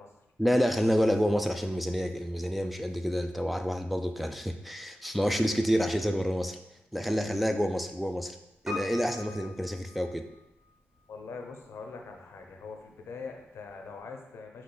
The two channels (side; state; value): both; normal; correlation 0.95